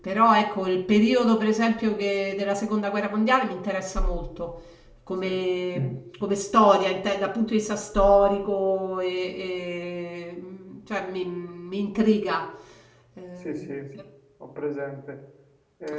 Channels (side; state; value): both; identical; correlation 1.00